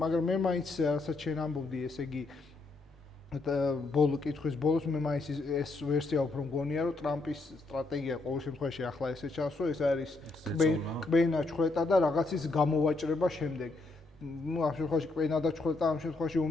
მე მაინც რასაც შენ ამბობდი, ესე იგი კითხვის ბოლოს მე მაინც ეს ვერსია უფრო მგონია, რომ ტრამპის სტრატეგია ყოველ შემთხვევაში ახლა ესე ჩანს, რომ ეს არის კბენა ჩხვეტა და რაღაცის გამოვაჭრება შემდეგ. ну ამ შემთხვევაში კბენა და ჩხვეტა ამ შემთხვევაში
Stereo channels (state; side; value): quieter; right; 3.3 dB